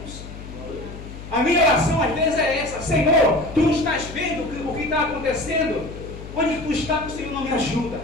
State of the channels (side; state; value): left; noise; hum, 13 dB below the sound